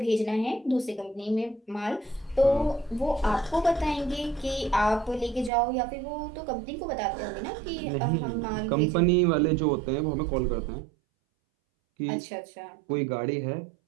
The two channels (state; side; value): drops out; left; at 5.5 s